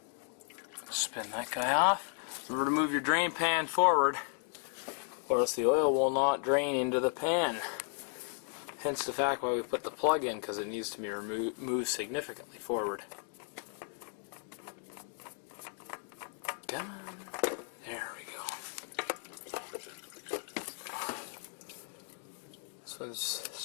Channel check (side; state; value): right; silent; 55 dB below the other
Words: Spin that guy off. Remember to move your drain pan forward, or else the oil will not drain into the pan. Hence the fact why we put the plug in, because it needs to be moved significantly forward. Come on. There we go. This one's